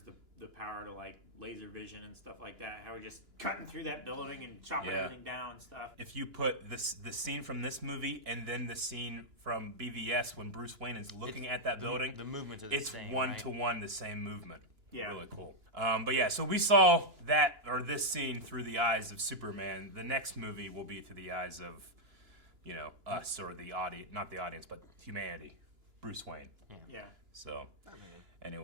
the power to like laser vision and stuff like that. How we're just cutting through that building and chopping everything down and stuff. If you put the scene from this movie and then the scene from BVS when Bruce Wayne is looking at that building, the movements are the same. It's one-to-one the same movement. Yeah. Really cool. But yeah, so we saw this scene through the eyes of Superman. The next movie will be through the eyes of, us or the audience, not the audience, but humanity. Bruce Wayne. Yeah. So,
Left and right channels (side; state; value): left; late; 2.9 ms